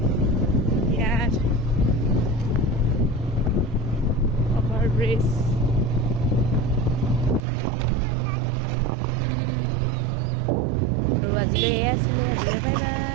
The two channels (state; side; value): drops out; left; at 7.4 s